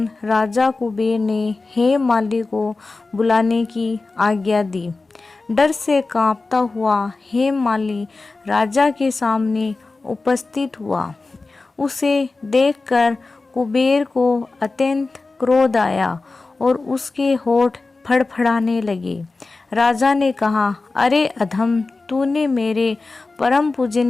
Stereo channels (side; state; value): right; quieter; 3.6 dB